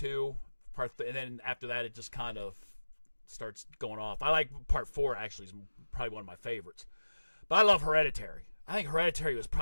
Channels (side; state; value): both; inverted; correlation -1.00